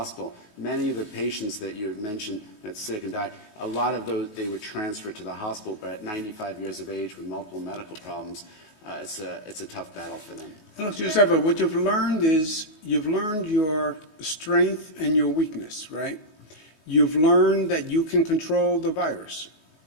Many of the patients that you had mentioned that's sick and died, a lot of those, they were transferred to the hospital, but at 95 years of age with multiple medical problems, it's a tough battle for them. Look, Joseph, what you've learned is you've learned your strength and your weakness, right? You've learned that you can control the virus,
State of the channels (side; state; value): right; late; 19 ms